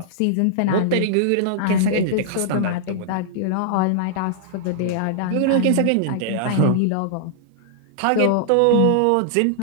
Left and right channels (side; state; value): both; different; correlation -0.01